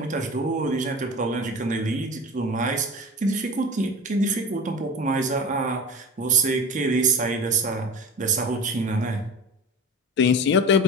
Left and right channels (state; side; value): normal; both; correlation 0.34